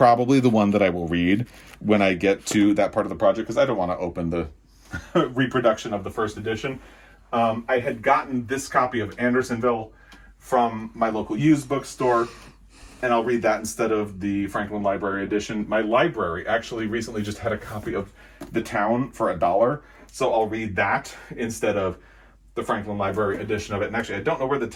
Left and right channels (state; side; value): identical; both; correlation 1.00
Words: the one that I will read when I get to that part of the project, because I don't want to open the reproduction of the first edition. I had gotten this copy of Andersonville from my local used bookstore, and I'll read that instead of the Franklin Library edition. My library actually recently just had a copy of The Town for $1, so I'll read that instead of the Franklin Library edition of it. And actually, I don't know where The